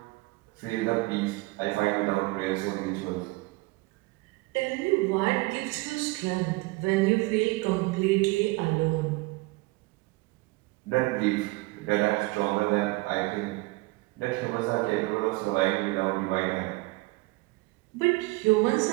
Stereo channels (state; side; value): quieter; left; 23.0 dB